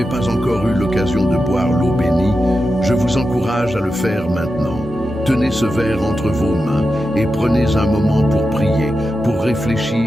pas encore eu l'occasion de boire l'eau bénie, je vous encourage à le faire maintenant. Tenez ce verre entre vos mains et prenez un moment pour prier, pour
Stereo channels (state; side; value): normal; both; correlation 0.90